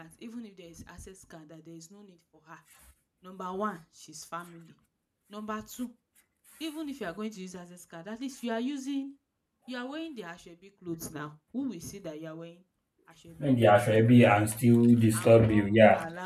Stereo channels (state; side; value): identical; both; correlation 1.00